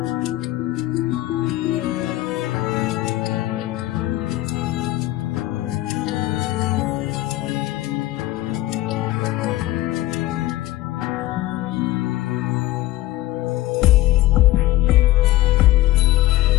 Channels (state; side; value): quieter; right; 16.3 dB